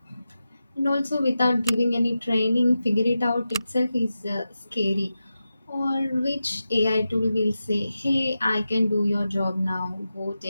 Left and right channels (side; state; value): both; inverted; correlation -0.92